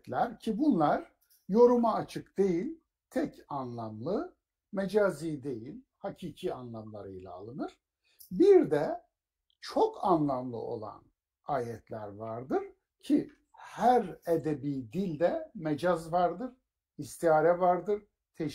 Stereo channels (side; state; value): both; identical; correlation 1.00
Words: ki bunlar yoruma açık değil, tek anlamlı, mecazi değil, hakiki anlamlarıyla alınır. Bir de çok anlamlı olan ayetler vardır ki her edebi dilde mecaz vardır, istiare vardır,